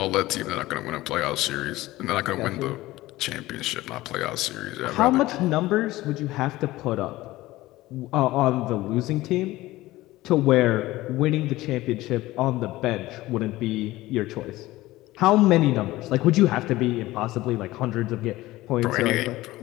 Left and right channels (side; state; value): right; quieter; 17.7 dB